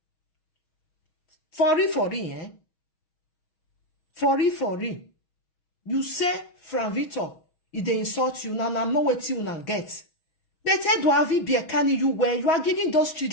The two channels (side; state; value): right; late; 6.3 ms